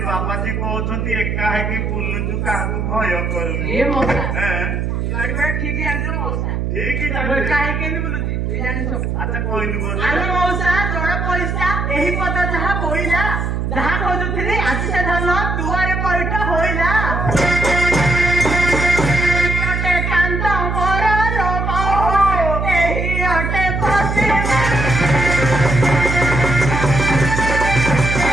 बाबा जी कहउछंती एका है कि बुल्लु काहू भय करू ए मौसा हैं गाड़ी में ठीक है अंदर मौसा ठीक ही वो काहे के नहीं बोलुची ए जानि सब अच्छा कोई नहीं बोल अरे मौसा जोड़ा पैसा एही पता जहा बोइला जहा खोजुथिली आसी से धन दुआरे पैठा होइला अटे कांता मोर रो बाबू एही अटे पसे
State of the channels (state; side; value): noise; right; hum, 1 dB below the sound